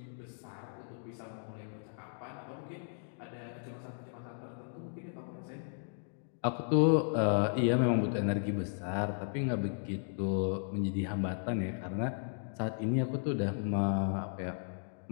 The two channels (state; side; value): silent; right; digital silence